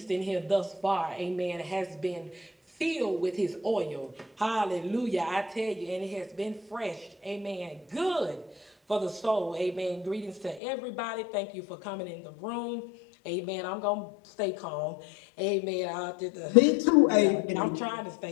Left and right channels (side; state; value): right; drops out; at 10.6 s